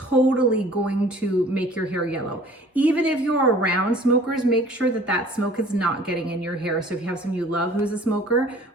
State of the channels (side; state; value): both; normal; correlation 0.50